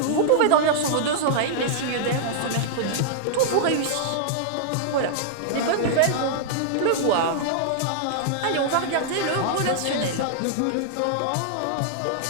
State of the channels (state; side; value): different; both; correlation -0.01